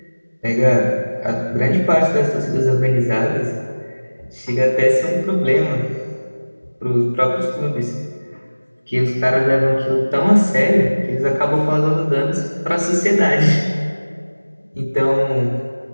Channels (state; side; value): inverted; both; correlation -1.00